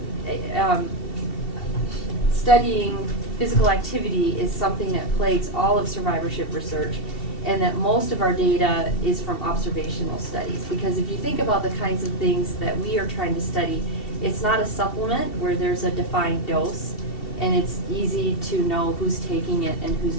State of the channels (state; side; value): late; right; 2.7 ms